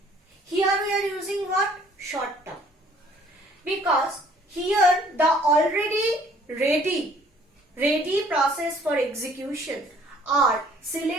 here we are using what? Short term. Because here the already ready process for execution are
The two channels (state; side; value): normal; both; correlation 0.58